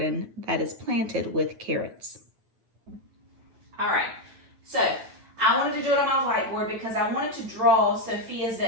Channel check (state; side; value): late; left; 8.9 ms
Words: that is planted with carrots. All right, so I wanted to do it on my whiteboard because I wanted to draw Sophia's